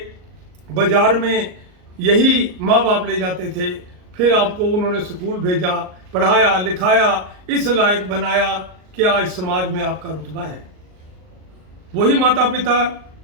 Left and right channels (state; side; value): late; left; 38 ms